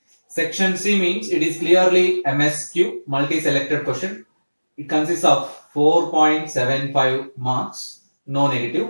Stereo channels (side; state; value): both; inverted; correlation -1.00